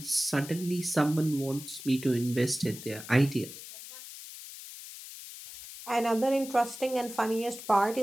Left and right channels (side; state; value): left; noise; hiss, 13 dB below the sound